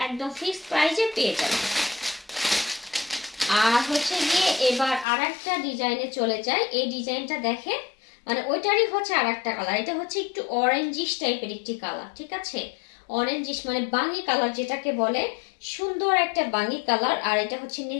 একদম ফিক্সড প্রাইসে পেয়ে যাবেন। আর হচ্ছে গিয়ে এবার আর একটা ডিজাইনে চলে যায়। এই ডিজাইনটা দেখেন, মানে ওইটারই হচ্ছে আর একটা কালার। এটা হচ্ছে একটু অরেঞ্জিশ টাইপের একটি কালার, ঠিক আছে? অরেঞ্জিশ মানে বাঙ্গি কালার যেটাকে বলে, সুন্দর একটা বাঙ্গি কালার। আর এটা হচ্ছে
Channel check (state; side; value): drops out; right; at 5.1 s